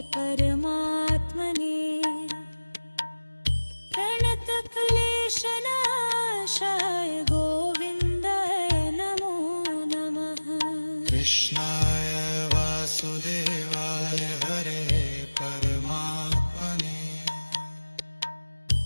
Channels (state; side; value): inverted; both; correlation -1.00